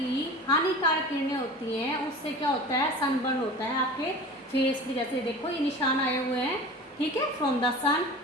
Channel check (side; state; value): both; normal; correlation 0.36